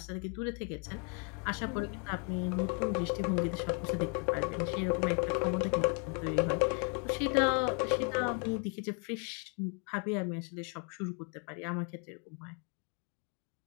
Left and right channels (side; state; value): right; quieter; 38.2 dB